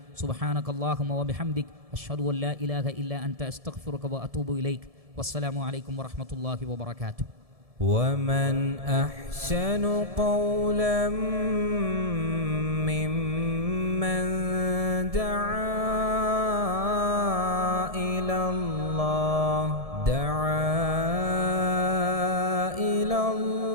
സുബ്ഹാനകല്ലാഹുമ്മ വബിഹംദിക് അഷ്ഹദു അൻ ലാ ഇലാഹ ഇല്ലാ അൻത അസ്തഗ്ഫിറുക വഅതൂബു ഇലൈക് വസ്സലാമു അലൈക്കും വറഹ്മത്തുള്ളാഹി വബറകാതുഹു. ومن أحسن قولا ممن دعا إلى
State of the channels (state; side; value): late; left; 1.7 ms